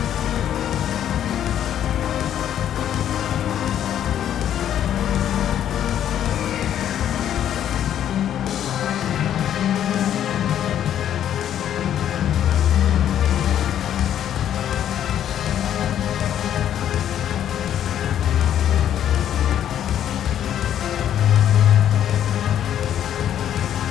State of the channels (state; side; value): quieter; right; 10.4 dB